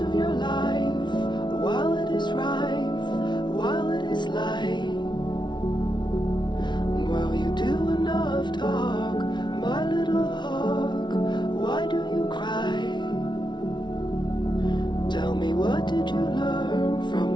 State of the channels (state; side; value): late; right; 0.22 ms